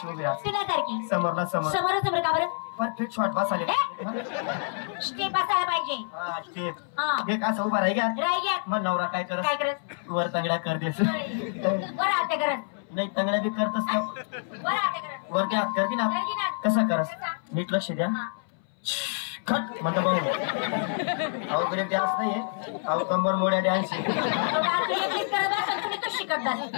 उभी राहा समोर का बरं परफेक्ट शॉट बसाले स्टेप बसायला पाहिजे स्टेप एक असं उभा राही मग नवरा काय करत वर तंगड्या कर देस नाही तंगड्या बी करतस वर क्या कर की ना कसा करस नीट लक्ष द्या खट म्हणतो भाऊ अहो ब्रेक डान्स नाहीये अहो कंबर मोड्या डान्स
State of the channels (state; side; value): silent; right; 60 dB below the other